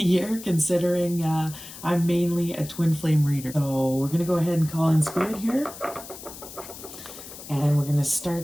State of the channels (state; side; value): noise; left; hiss, 14 dB below the sound